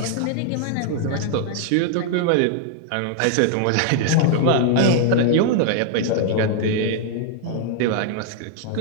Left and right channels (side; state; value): both; different; correlation 0.00